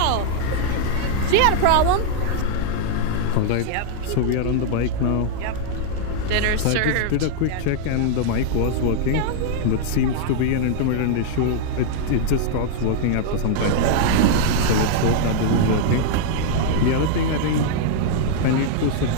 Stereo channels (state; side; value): different; both; correlation -0.01